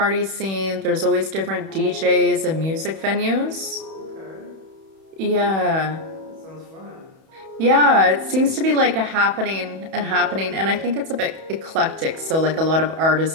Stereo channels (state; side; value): late; left; 31 ms